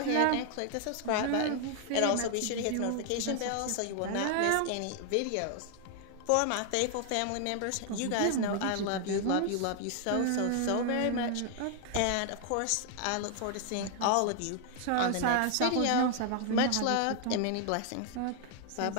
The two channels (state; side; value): different; both; correlation 0.00